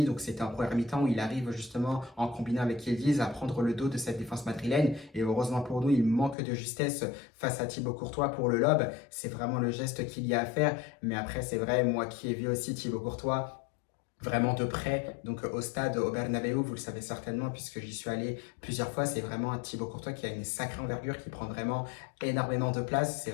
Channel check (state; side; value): drops out; right; at 6.4 s